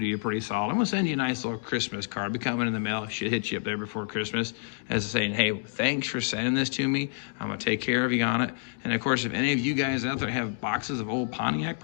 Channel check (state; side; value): silent; right; digital silence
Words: you pretty solid. I'm going to send you a nice little Christmas card. Be coming in the mail. Should hit you up there before Christmas as saying, hey, thanks for sending this to me. I'm going to take care of you on it. And of course, if any of you guys out there have boxes of old Pontiac